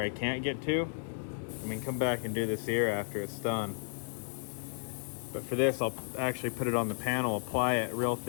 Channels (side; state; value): right; silent; 56 dB below the other